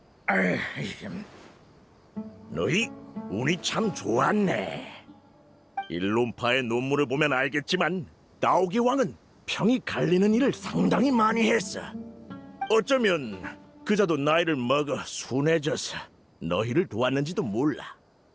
너희 운이 참 좋았네. 일론파의 논문을 보면 알겠지만 나오기 왕은 평이 갈리는 일을 상당히 많이 했어. 어쩌면 그자도 나이를 먹어 순해져서 너희를 도왔는지도 몰라.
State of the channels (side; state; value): both; identical; correlation 1.00